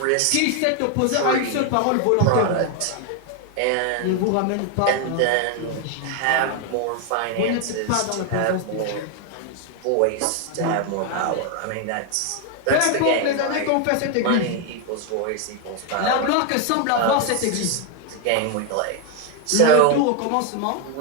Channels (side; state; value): both; different; correlation 0.01